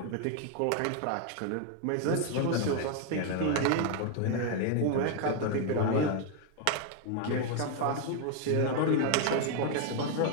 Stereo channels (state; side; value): different; both; correlation 0.01